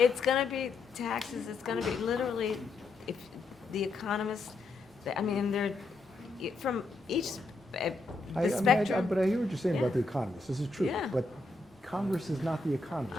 going to be taxes. It's going to be literally, if the economists, I mean, they're from each the spectrum. But I hear what you're saying Yeah. about the economists. This is true. Yeah. But Congress is not the economists.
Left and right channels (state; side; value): quieter; right; 3.4 dB